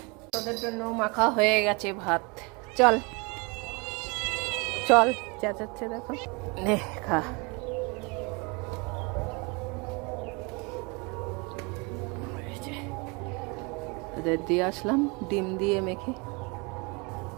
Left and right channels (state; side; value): quieter; left; 29.8 dB